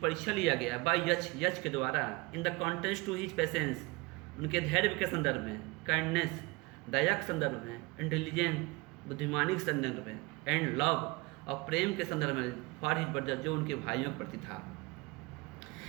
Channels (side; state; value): left; quieter; 25.1 dB